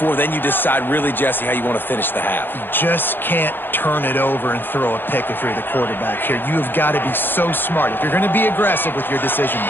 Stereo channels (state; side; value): late; right; 0.098 ms